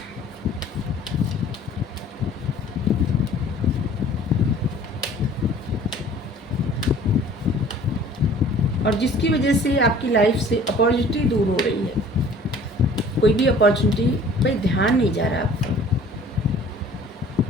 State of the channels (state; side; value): normal; both; correlation 0.50